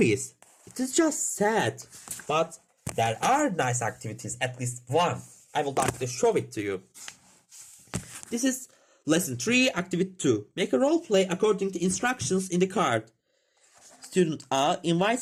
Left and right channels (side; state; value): both; identical; correlation 1.00